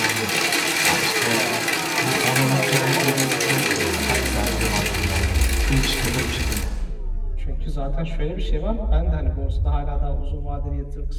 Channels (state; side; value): identical; both; correlation 1.00